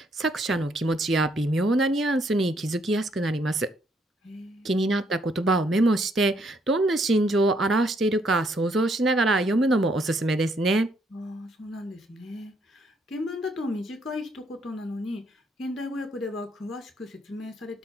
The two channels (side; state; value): both; normal; correlation 0.71